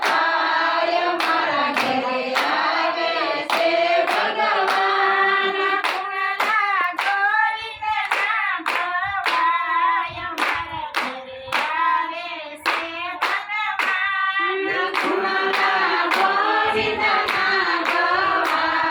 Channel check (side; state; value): both; identical; correlation 1.00